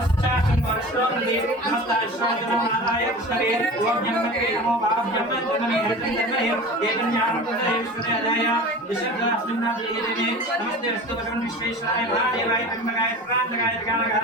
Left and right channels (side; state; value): both; normal; correlation 0.35